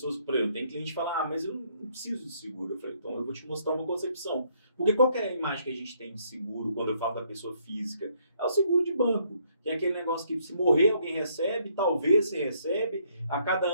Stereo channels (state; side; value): inverted; both; correlation -0.69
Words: por exemplo, tem cliente que fala, mas eu não preciso de seguro. Eu falei, então eu vou te mostrar uma concepção. Porque qual que é a imagem que a gente tem de seguro quando eu falo da pessoa física? É o seguro de banco, que é aquele negócio que se morrer alguém recebe, talvez você recebe, a cada